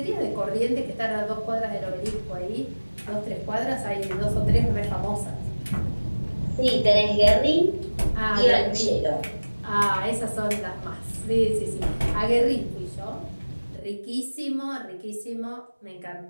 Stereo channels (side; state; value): both; inverted; correlation -1.00